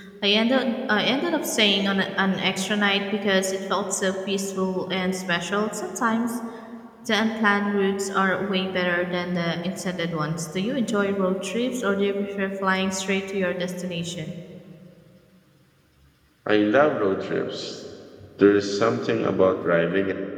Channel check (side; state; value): both; identical; correlation 1.00